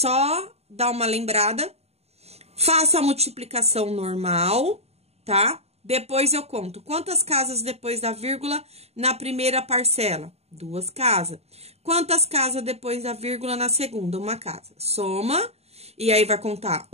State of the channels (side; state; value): left; late; 0.30 ms